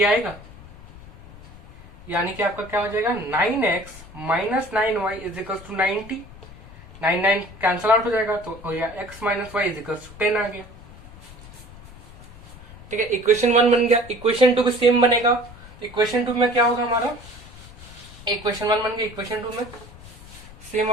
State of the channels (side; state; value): left; noise; rumble, 19 dB below the sound